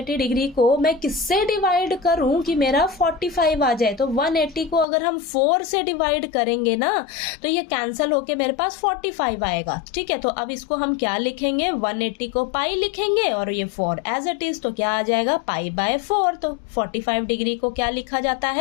डिग्री को मैं किससे डिवाइड करूं कि मेरा 45 आ जाए, तो 180 को अगर हम 4 से डिवाइड करेंगे ना तो ये कैंसिल होके मेरे पास 45 आएगा, ठीक है। तो अब इसको हम क्या लिखेंगे, 180 को पाई लिखेंगे और ये 4 एज इट इज, तो क्या आ जाएगा, π/4। तो 45 डिग्री को क्या लिखा जाता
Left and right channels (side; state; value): right; drops out; at 4.9 s